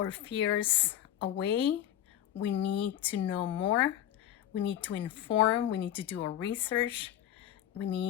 fears away. We need to know more. We need to inform. We need to do our research. We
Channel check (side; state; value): right; quieter; 11.5 dB